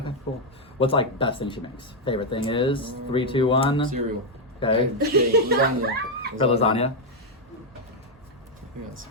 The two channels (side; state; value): both; normal; correlation 0.00